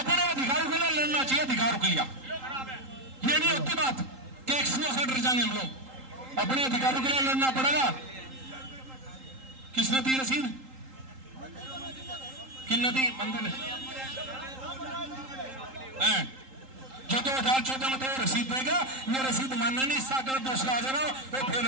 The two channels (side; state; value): left; late; 3.8 ms